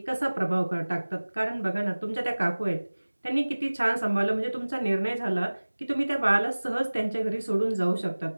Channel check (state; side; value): inverted; both; correlation -1.00